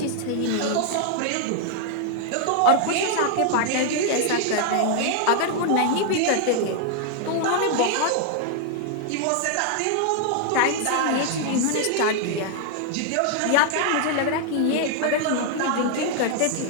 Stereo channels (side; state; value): both; different; correlation 0.00